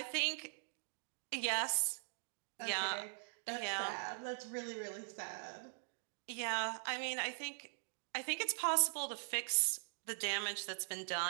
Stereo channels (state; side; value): silent; left; digital silence